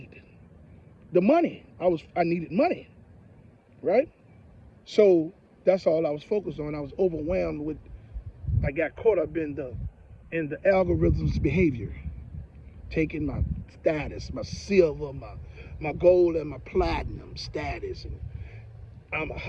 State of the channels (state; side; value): identical; both; correlation 1.00